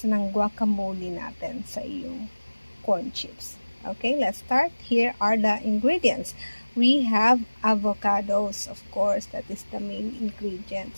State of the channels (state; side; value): inverted; both; correlation -1.00